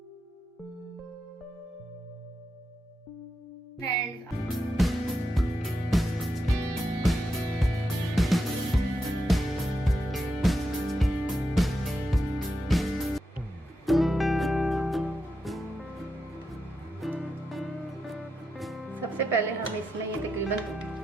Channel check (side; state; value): both; normal; correlation 0.86